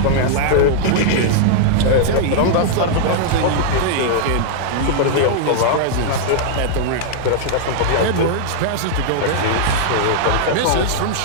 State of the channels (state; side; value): different; both; correlation -0.01